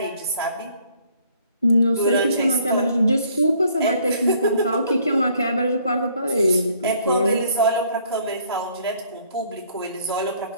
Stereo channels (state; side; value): inverted; both; correlation -0.62